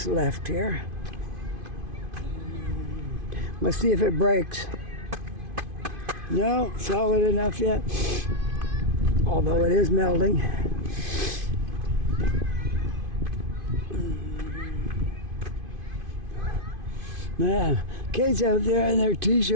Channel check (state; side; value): late; left; 2.5 ms